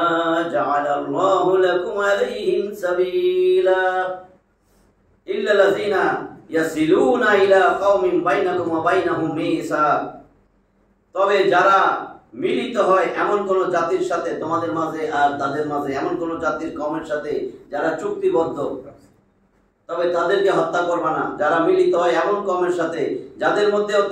جعل الله لكم عليهم سبيلا إلا الذين يصلون إلى قوم بينكم وبينهم ميثاق, তবে যারা মিলিত হয় এমন কোন জাতির সাথে তোমাদের মাঝে আর তাদের মাঝে, এমন কোন জাতির কওমের সাথে যারা চুক্তিবদ্ধ, তবে তাদেরকে হত্যা করবা না। যারা মিলিত হয় এমন কওমের সাথে যাদের মধ্যেও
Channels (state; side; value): identical; both; correlation 1.00